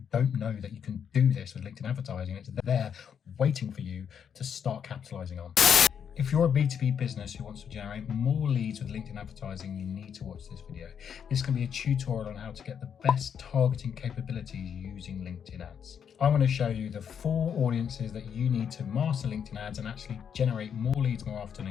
don't know that you can do this with LinkedIn advertising. It's there waiting for you to start capitalizing on. If you're a B2B business who wants to generate more leads with LinkedIn advertising, you need to watch this video. This can be a tutorial on how to get the best targeting capabilities using LinkedIn ads. I'm going to show you the 4 audiences that you need to master LinkedIn ads and actually generate more leads more often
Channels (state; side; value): quieter; right; 7.8 dB